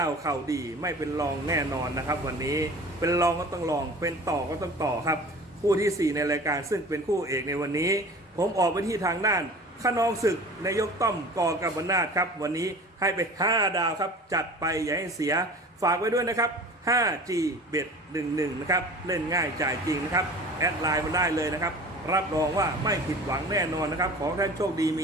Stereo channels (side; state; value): both; normal; correlation 0.40